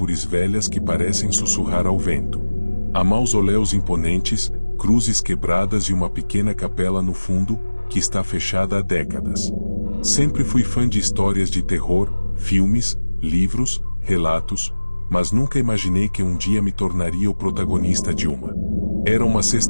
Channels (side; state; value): both; inverted; correlation -1.00